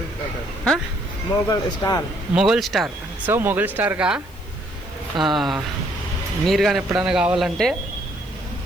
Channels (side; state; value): left; noise; hiss, 25 dB below the sound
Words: हाँ మొగల్ స్టార్. సో మొగల్ స్టార్గా మీరు కానీ ఎప్పుడైనా కావాలంటే